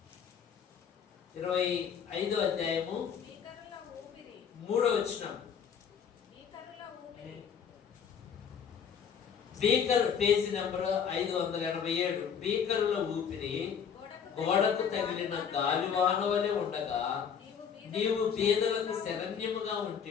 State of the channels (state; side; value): quieter; right; 7.3 dB